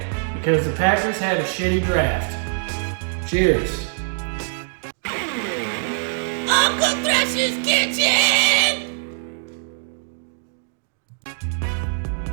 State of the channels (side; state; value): left; silent; digital silence